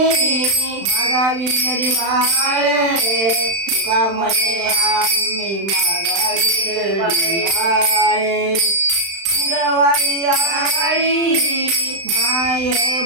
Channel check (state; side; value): late; left; 35 ms